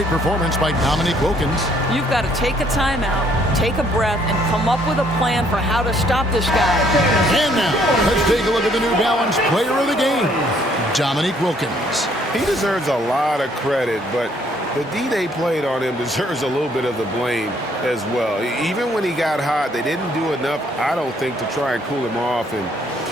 performance by D.Wilkins. You've got to take a timeout, take a breath, and come up with a plan for how to stop this guy. And now, let's take a look at the New Balance player of the game, D.Wilkins. He deserves a lot of credit, but the D they played on him deserves a little bit of the blame as well. Even when he got hot, they didn't do enough, I don't think, to try and cool him off. And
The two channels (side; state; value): both; normal; correlation 0.65